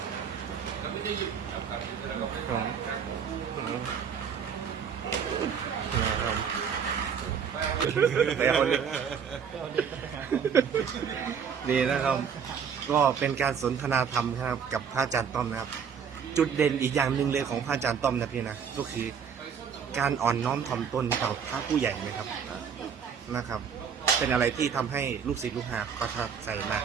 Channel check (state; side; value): quieter; left; 7.1 dB